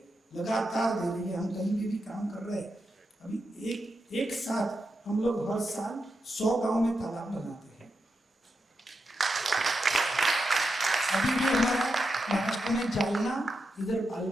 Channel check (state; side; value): normal; both; correlation 0.87